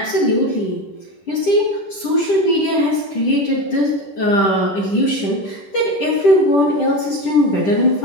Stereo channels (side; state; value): right; late; 10 ms